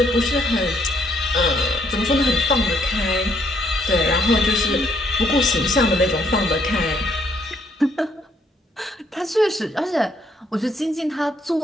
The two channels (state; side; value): normal; both; correlation 0.70